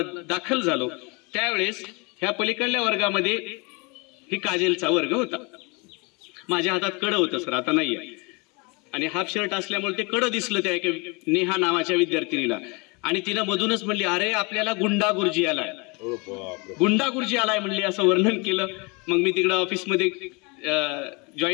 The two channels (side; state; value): right; quieter; 29.2 dB